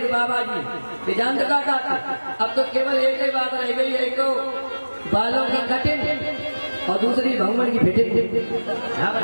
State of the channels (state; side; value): inverted; both; correlation -1.00